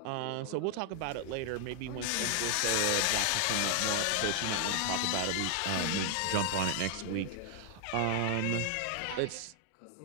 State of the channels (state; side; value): different; both; correlation 0.00